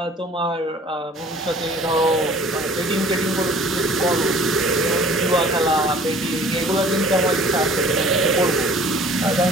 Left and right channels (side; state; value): both; normal; correlation 0.50